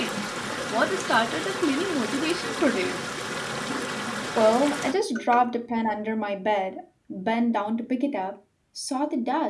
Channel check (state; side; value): identical; both; correlation 1.00